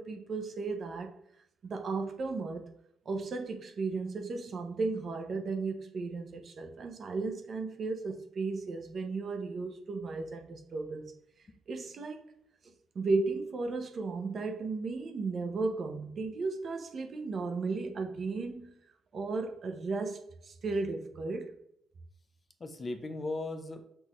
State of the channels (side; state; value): left; quieter; 3.1 dB